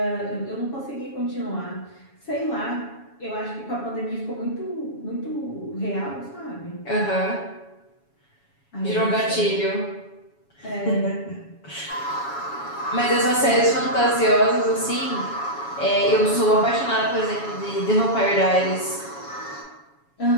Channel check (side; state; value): right; late; 7.2 ms